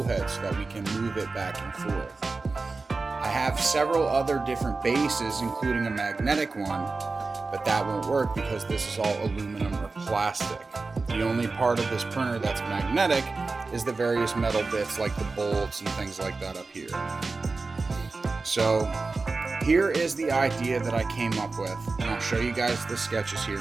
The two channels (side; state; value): left; quieter; 3.8 dB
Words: head so that we can move it back and forth. I have several other different bases, including a magnetic one, but that won't work because this is all aluminum or plastic. The only part of this printer that's magnetic is the various metal bits like the bolts and things like that up here. So here is the idea that I came up with, and I'll show you guys the sketches here